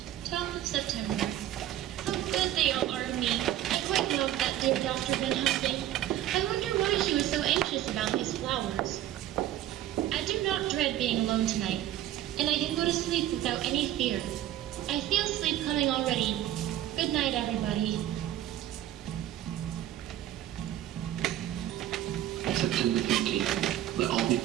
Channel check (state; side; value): quieter; left; 12.7 dB